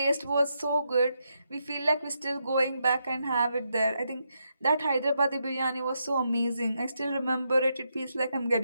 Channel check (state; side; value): inverted; both; correlation -0.82